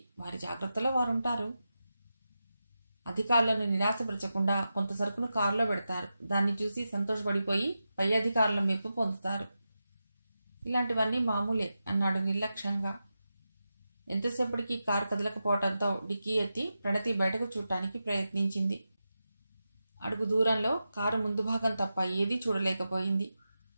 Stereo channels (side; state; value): both; inverted; correlation -0.91